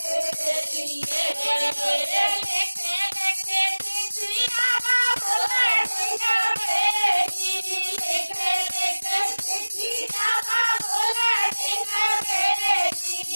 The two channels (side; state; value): both; inverted; correlation -1.00